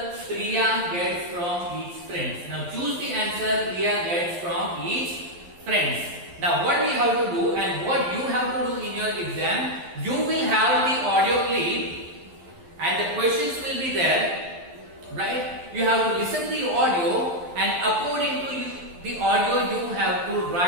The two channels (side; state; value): left; late; 11 ms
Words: Priya gets from each friends. Now choose the answer Priya gets from each friends. Now what we have to do and what you have to do in your exam, you will have the audio clip and the questions will be there, right? You have to listen to the audio, and according to the audio you have to